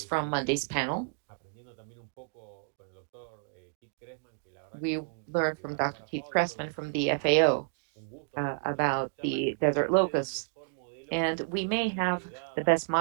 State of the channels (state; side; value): silent; left; digital silence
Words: from Monday's panel. We learned from Dr. Keith Cressman from the FAO about the desert locusts. And we may have the best